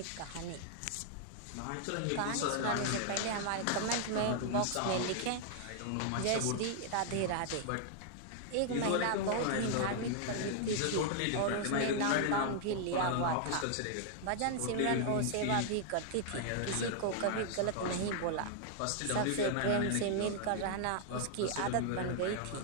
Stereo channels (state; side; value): different; both; correlation 0.00